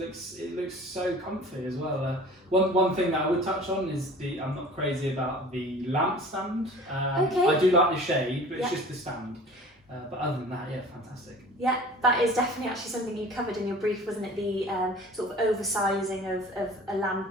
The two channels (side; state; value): both; normal; correlation 0.43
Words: so comfy as well. One thing that I would touch on is I'm not crazy about the lamp stand. Okay. I do like the shade, but it's Yeah. just the stand. But other than that, yeah, fantastic. Yeah, that is definitely actually something you covered in your brief, wasn't it? The sort of oversizing of a